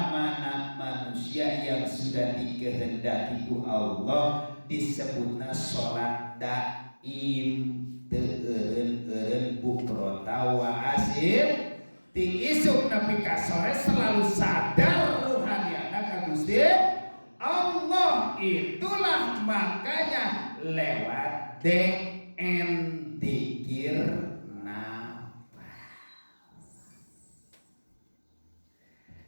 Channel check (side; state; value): both; inverted; correlation -1.00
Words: mana manusia yang sudah dikehendaki ku Allah disebutna sholat daim. Eureun bukrota wa asil ti isuk nepi ka sore selalu sadar ruhaniyana ka Gusti Allah. Itulah makanya lewat DN dzikir nafas.